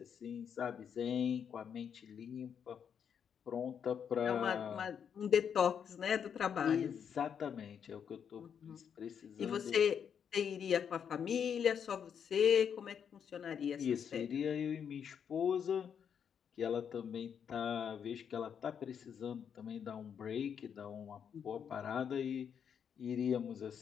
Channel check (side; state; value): right; quieter; 7.7 dB